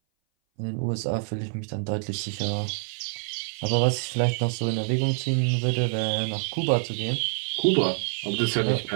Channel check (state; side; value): silent; left; 58 dB below the other